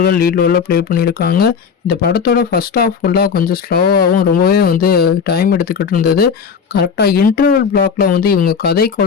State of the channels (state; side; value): quieter; right; 6.4 dB